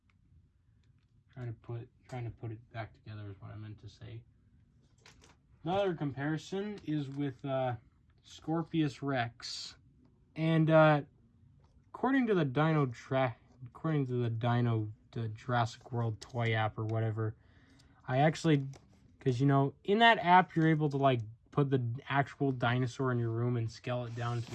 Trying to put it back together is what I meant to say. Another comparison is with Scorpius Rex, and according to the the Jurassic World toy app or whatever, I actually, because you know, in that app you're able to like put the actual dinosaur in your room and scale it down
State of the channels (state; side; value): identical; both; correlation 1.00